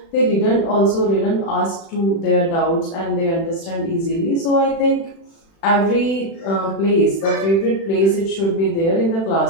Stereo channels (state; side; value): late; right; 36 ms